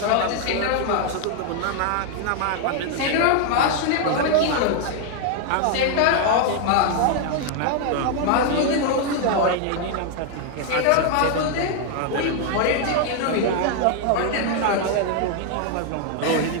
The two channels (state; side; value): different; both; correlation 0.00